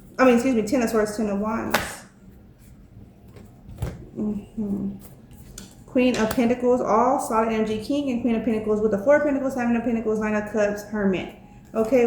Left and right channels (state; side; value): identical; both; correlation 1.00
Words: Ten of Swords, Ten of Wands. Queen of Pentacles, all solid energy. King and Queen of Pentacles with the Four of Pentacles, Seven of Pentacles, Nine of Cups, Hermit. Okay,